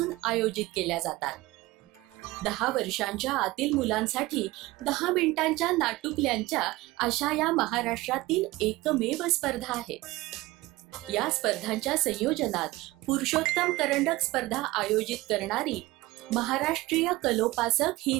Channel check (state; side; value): quieter; left; 19.6 dB